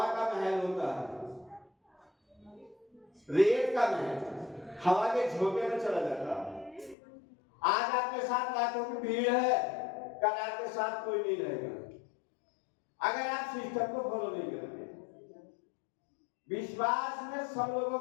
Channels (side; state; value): right; drops out; at 7.0 s